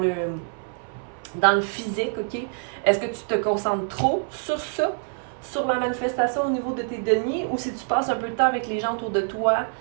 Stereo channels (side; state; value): left; silent; 58 dB below the other